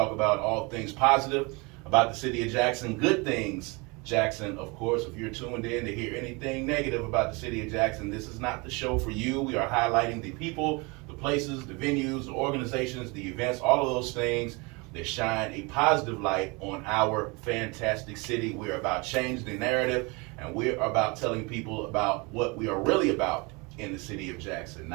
about all things positive about the city of Jackson, good things Jackson. Of course, if you're tuned in to hear anything negative about the city of Jackson, this is not the show for you. We are highlighting the people, the places, the venues, the organizations, the events, all of those things that shine a positive light on our fantastic city. We're about changing the narrative, and we're about telling people about what we are really about in the city of Jackson,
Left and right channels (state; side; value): quieter; left; 27.8 dB